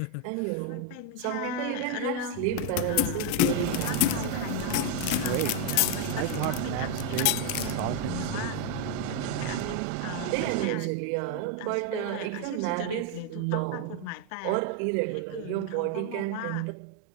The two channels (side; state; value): both; different; correlation 0.01